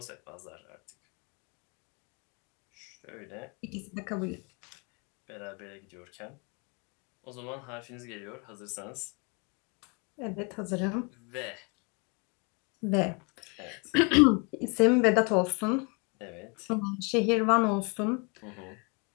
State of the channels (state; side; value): quieter; right; 32.6 dB